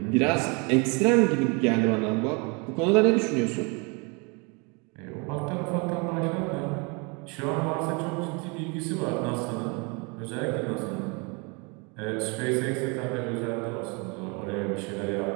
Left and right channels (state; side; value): quieter; left; 31.1 dB